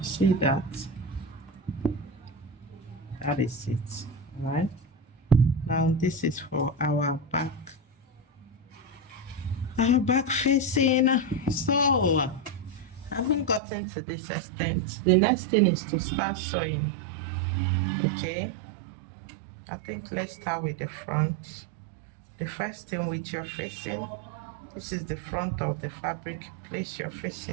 See that? That is it. All right. Now this is for our back. Our back facing. So having gotten to this extent, the next thing is to start sewing. Okay. I think let's start with the front. The first thing with your facing, this is the front of the fabric. Place your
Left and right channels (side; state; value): left; drops out; at 13.6 s